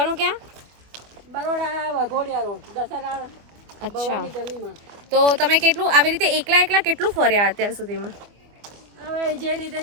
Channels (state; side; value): late; left; 24 ms